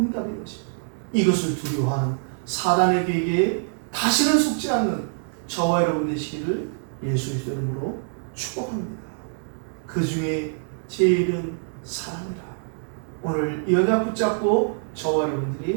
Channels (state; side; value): silent; left; digital silence